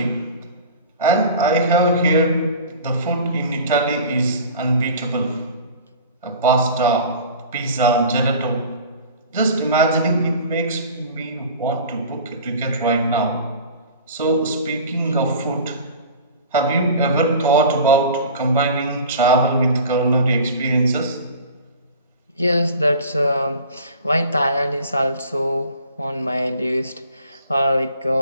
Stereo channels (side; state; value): both; inverted; correlation -0.41